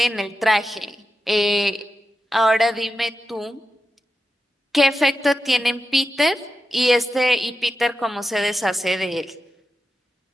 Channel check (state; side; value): normal; both; correlation 0.90